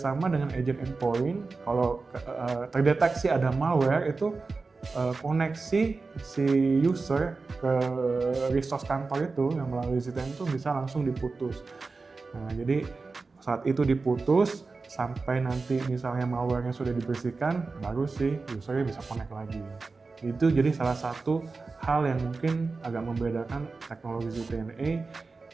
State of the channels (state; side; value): quieter; left; 4.0 dB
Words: dengan agent endpoint. Kalau terdeteksi ada malware itu koneksi si user ke resource kantor itu yang melalui CTN itu bisa langsung diputus. Nah, jadi saat itu diputus sampai nanti misalnya malware-nya sudah dibersihkan, baru si usernya bisa connect lagi. Itu jadi salah satu hal yang mungkin agak membedakan teknologi CTNA